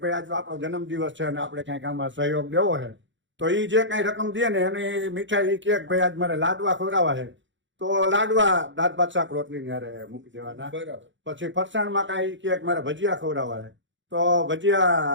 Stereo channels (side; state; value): left; late; 0.54 ms